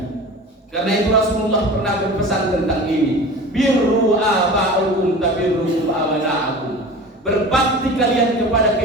Karena itu Rasulullah pernah berpesan tentang ini, birru aba'ukum tabirru abana'akum. Berbakti kalian kepada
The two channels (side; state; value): both; normal; correlation 0.36